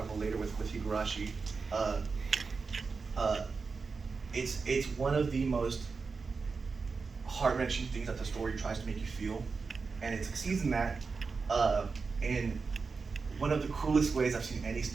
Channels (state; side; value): quieter; left; 4.7 dB